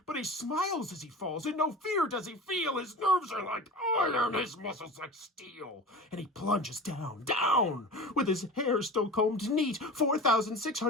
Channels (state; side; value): normal; both; correlation 0.33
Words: But he smiles as he falls, and no fear does he feel. His nerves are like iron, his muscles like steel. And he plunges down, down, with his hair still combed neat,